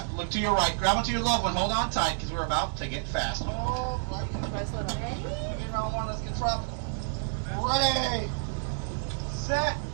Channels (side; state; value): left; silent; digital silence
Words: look to your right, grab onto your loved one, hold on tight because we're about to get fast. Oh, right, ready? Round one, let's get tropical. Ready, set,